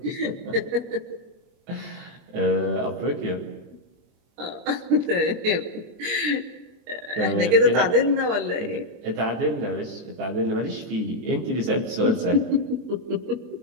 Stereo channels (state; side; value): late; left; 23 ms